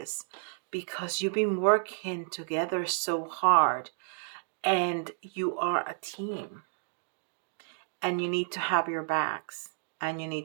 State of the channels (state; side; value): silent; left; digital silence